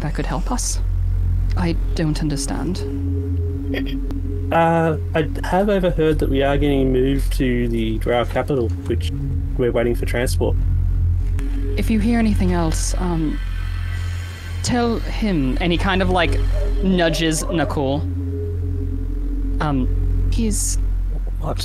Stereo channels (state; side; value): identical; both; correlation 1.00